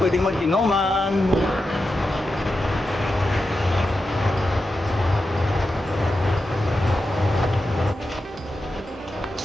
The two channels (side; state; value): both; normal; correlation 0.90